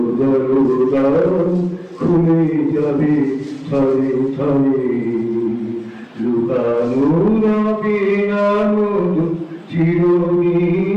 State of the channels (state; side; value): identical; both; correlation 1.00